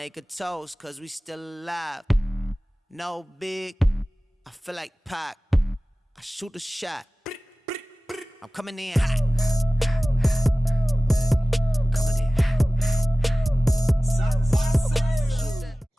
a toast, cause we still alive. No big, I feel like Pac. I shoot a shot. I'm coming in hot.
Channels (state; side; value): normal; both; correlation 0.97